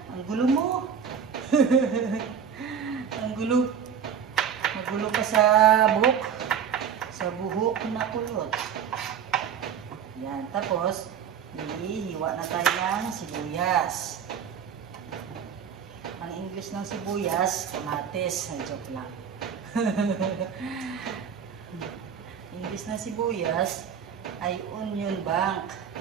Ang gulo mo. Ang gulo. Magulo pa sa buhok. Sa buhok na kulot. Yan. Tapos, hiwa na tayo ng sibuyas. Ang English ng sibuyas, kamatis. Ay, joke lang. English ng sibuyas ay onion bank.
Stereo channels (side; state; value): left; quieter; 7.7 dB